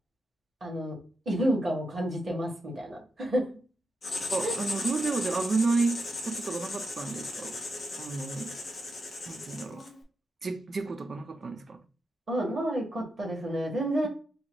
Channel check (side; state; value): both; normal; correlation 0.86